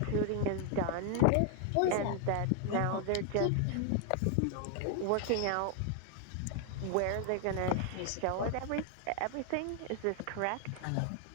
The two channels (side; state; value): both; different; correlation 0.00